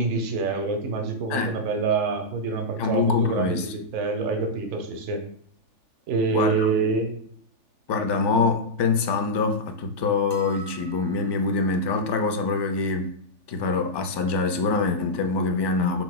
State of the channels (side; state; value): left; late; 3.4 ms